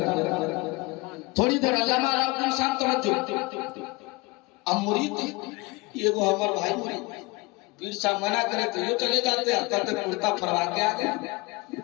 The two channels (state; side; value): quieter; right; 24.8 dB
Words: تھوڑی دیر علامہ الدین صاحب توجہ، اب مرید یہ وہ ہمارا بھائی مرید، پیر صاحب منع کرے تو یہ چلے جاتے ہیں، کہتے کرتا فرما کے آگے،